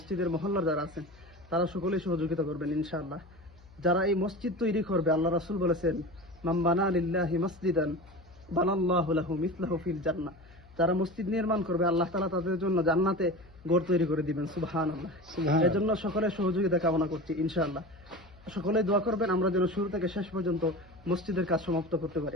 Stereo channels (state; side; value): noise; left; hum, 24 dB below the sound